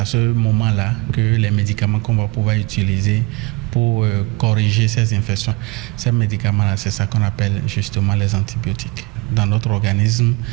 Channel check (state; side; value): quieter; left; 23.6 dB